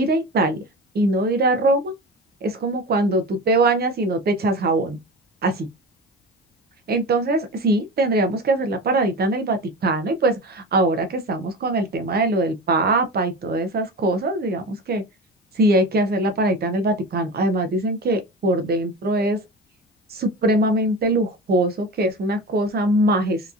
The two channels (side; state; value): both; normal; correlation 0.30